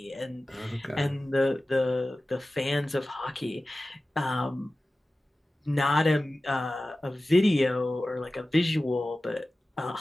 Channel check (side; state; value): both; normal; correlation 0.96